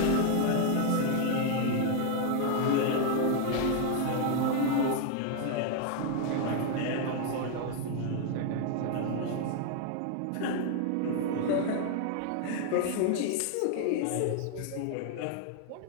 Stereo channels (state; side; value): different; both; correlation 0.00